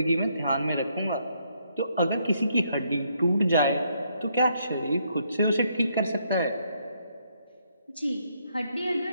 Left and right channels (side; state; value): both; inverted; correlation -0.73